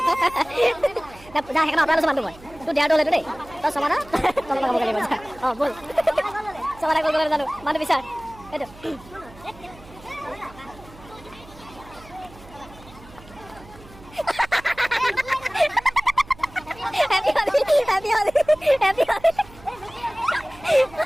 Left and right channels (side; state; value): right; noise; hum, 21 dB below the sound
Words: যা সেইকাৰণে আপোনাৰ লৈছোঁ মানুহ মই তোৰ দেয়াৰটো হ'লেতো দেই তই সমাদা তলত লগাবগৈ লাগিব যা অঁ ব'ল সমাদা কৰিবলৈ জানো মানুহ বিচাৰ এইটো Happy Holi, Happy Holi, Happy Holi.